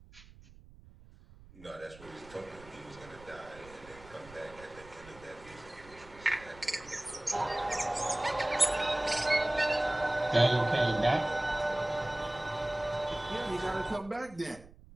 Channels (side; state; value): right; noise; rumble, 21 dB below the sound